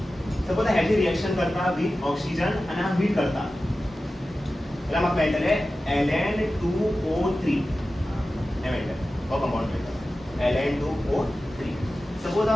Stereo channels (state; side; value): normal; both; correlation 0.94